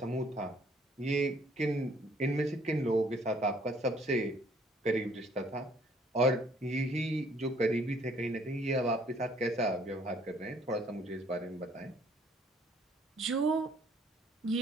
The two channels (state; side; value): normal; both; correlation 0.62